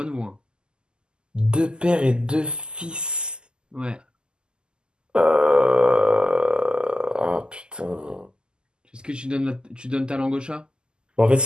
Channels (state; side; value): late; left; 0.047 ms